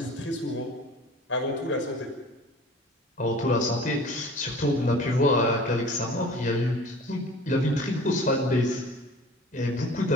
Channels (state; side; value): normal; both; correlation 0.44